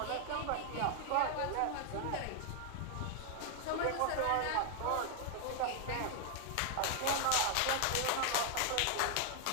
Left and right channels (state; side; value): different; both; correlation 0.00